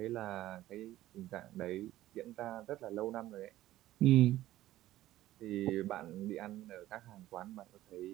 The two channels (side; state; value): left; quieter; 14.9 dB